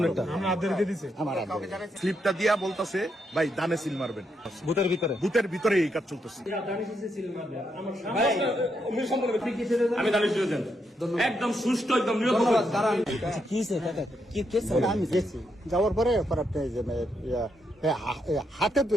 স্লিপটা দিয়া বলতেছে ভাই দানে সিল মারবেন, বুথের ভিতরে এই কাজ চলতেছে। আমি দানিশ দিয়েছেন একদম সুষ্ঠু একদম নিরপেক্ষ। আমি গেছি যাওয়ার পরে হাতে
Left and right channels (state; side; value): normal; both; correlation 0.80